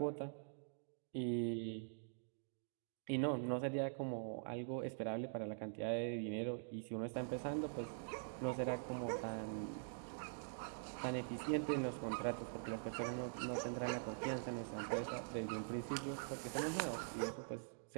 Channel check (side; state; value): left; silent; digital silence